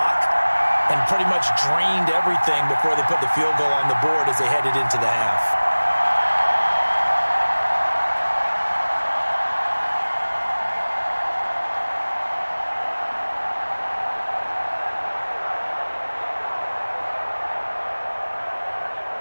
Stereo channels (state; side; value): inverted; both; correlation -1.00